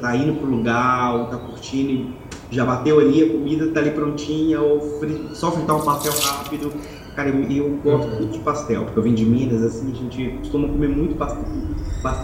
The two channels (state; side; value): identical; both; correlation 1.00